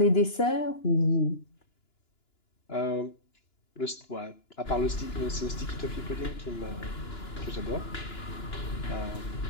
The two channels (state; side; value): late; right; 2.9 ms